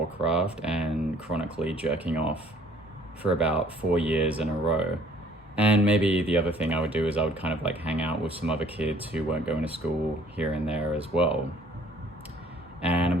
and chronically jerking off for about 4 years in a row. And maybe the other thing I would do is I would kind of like hang out with some other kids who weren't going to school here and there as well. And I'm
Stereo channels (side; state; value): both; normal; correlation 0.57